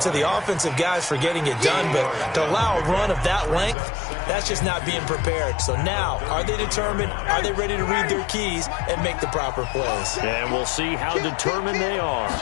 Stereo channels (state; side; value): drops out; right; at 3.8 s